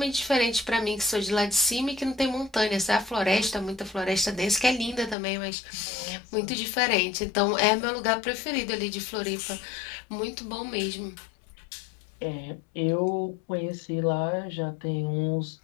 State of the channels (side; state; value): right; drops out; at 5.2 s